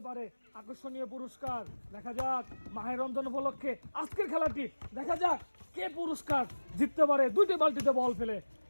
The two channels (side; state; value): both; inverted; correlation -1.00